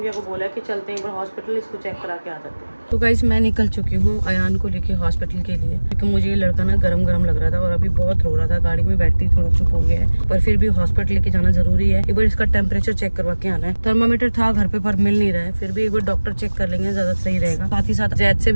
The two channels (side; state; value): both; inverted; correlation -1.00